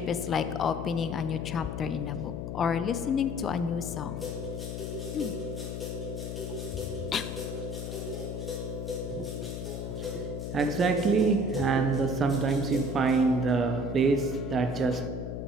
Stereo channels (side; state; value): left; noise; hum, 5 dB below the sound